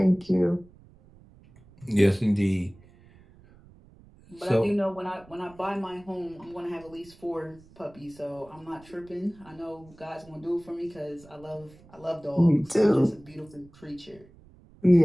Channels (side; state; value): right; noise; rumble, 25 dB below the sound